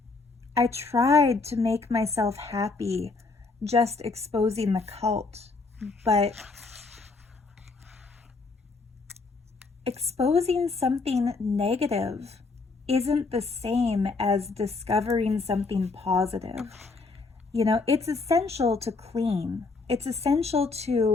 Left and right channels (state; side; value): quieter; right; 4.0 dB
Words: I tried to make myself happy just exposing the cult, but exposing something negative isn't the same as discovering something positive. You know, it's essential to clean. It's essential